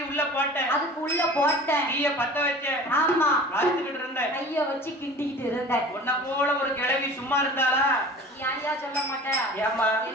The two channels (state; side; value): normal; both; correlation 0.41